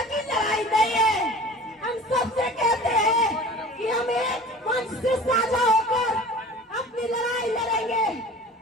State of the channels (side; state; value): both; normal; correlation 0.42